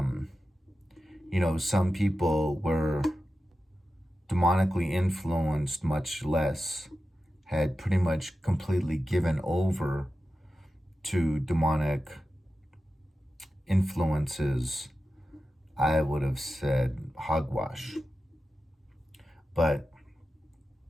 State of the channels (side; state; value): both; normal; correlation 0.92